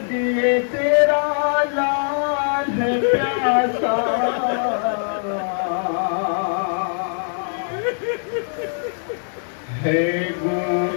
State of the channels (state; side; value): silent; right; digital silence